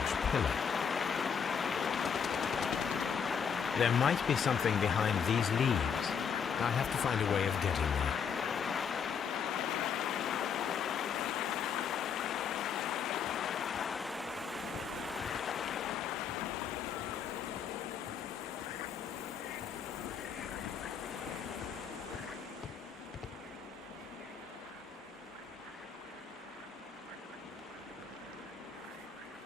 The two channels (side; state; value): right; quieter; 6.9 dB